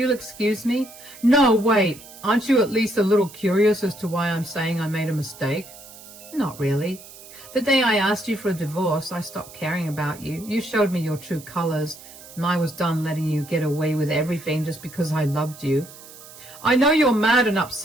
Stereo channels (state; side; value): noise; right; hiss, 18 dB below the sound